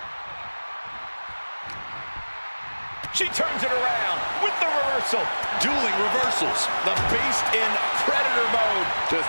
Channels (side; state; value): both; inverted; correlation -1.00